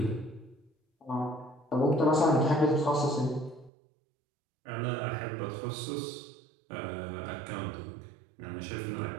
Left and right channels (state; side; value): drops out; left; at 3.7 s